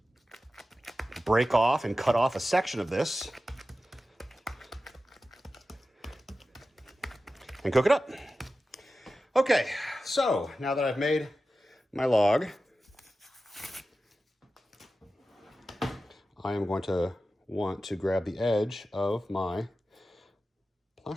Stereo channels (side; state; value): both; normal; correlation 0.94